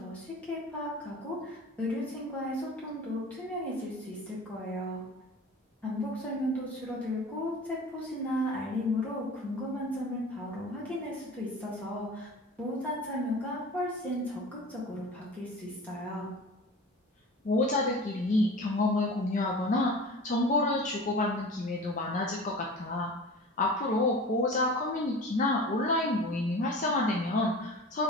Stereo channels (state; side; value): normal; both; correlation 0.37